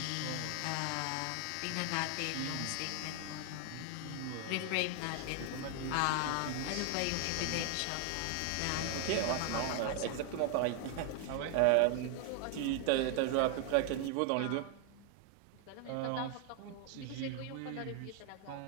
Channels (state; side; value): different; both; correlation 0.00